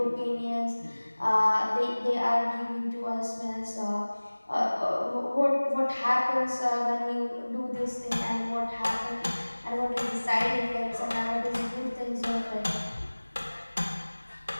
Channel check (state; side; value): inverted; both; correlation -1.00